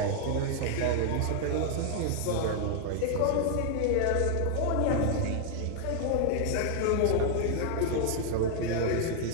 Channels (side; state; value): both; different; correlation 0.00